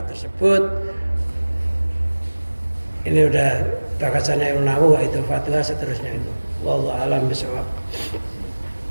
tersebut. Ini udah bakasannya Ibnu Nawawi, itu fatwa seterusnya itu. Wallahu a'lam bishawab.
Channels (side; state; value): both; inverted; correlation -1.00